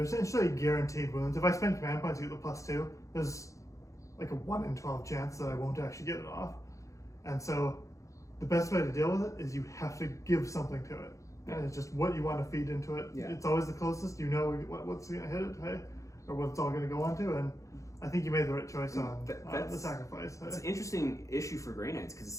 guaranteed wounds. If I spend command points to get the +2, there's like a 1 in 12 chance that I won't actually get it off. And so the best way to deal with it is you have to give something to it. And it's just what you want to feed into it. It's always the closest. You know what's going to hit it, hey? Or what it's all going to go onto. And I think you made the right choice on the sacrifice. It's an interesting issue for Grey Knights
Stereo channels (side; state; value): right; late; 0.15 ms